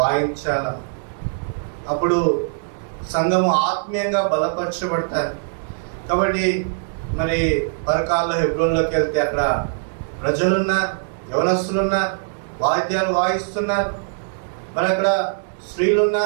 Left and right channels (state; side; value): silent; left; digital silence